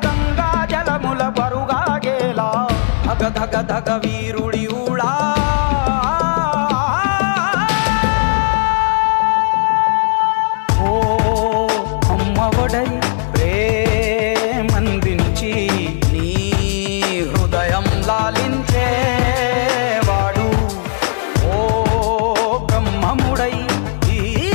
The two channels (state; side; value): silent; right; digital silence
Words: గంగా జలముల బరుగాగేలా, ధగ ధగ ధగ వీరుడి ఊళా. ఓ అమ్మఒడై ప్రేమందించి నీ